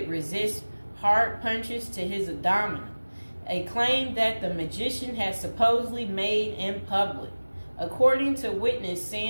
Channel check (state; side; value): inverted; both; correlation -1.00